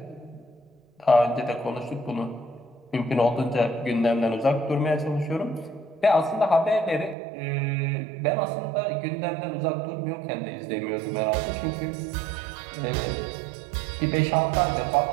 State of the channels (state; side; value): drops out; left; at 7.2 s